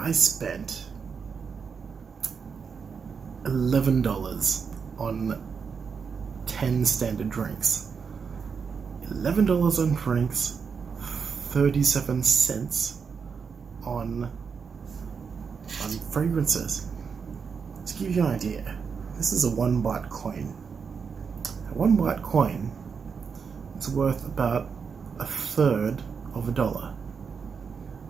spent $11 on 10 standard drinks. $11 on drinks, 37 cents on fragrances. To give you an idea, this is a 1 baht coin. A 1 baht coin is worth about a third of a dollar.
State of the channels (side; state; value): left; quieter; 5.9 dB